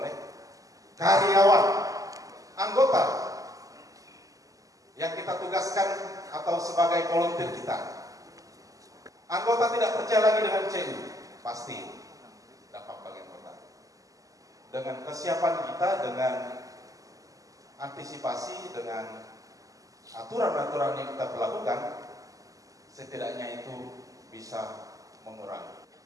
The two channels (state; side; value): late; left; 0.17 ms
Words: karyawan, anggota yang kita tugaskan atau sebagai volunteer kita. Anggota tidak percaya lagi dengan CU, pasti dampak bagi anggota. Dengan kesiapan kita, dengan antisipasi, dengan aturan-aturan yang kita berlakukan, setidaknya itu bisa mengurangi.